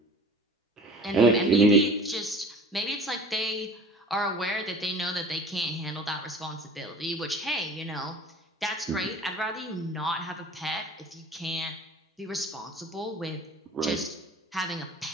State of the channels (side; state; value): both; normal; correlation 0.43